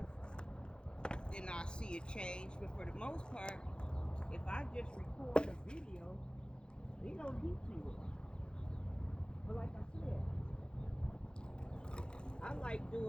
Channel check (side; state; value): right; late; 0.049 ms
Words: then I see a change. But for the most part, if I just record a video, they don't get to it. But like I said, I like